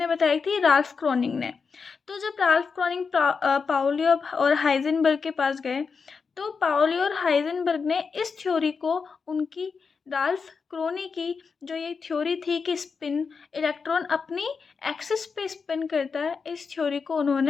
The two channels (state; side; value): quieter; right; 5.3 dB